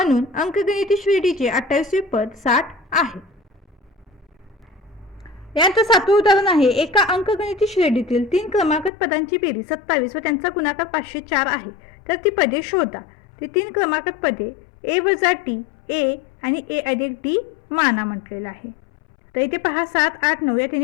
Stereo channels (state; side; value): drops out; right; at 8.9 s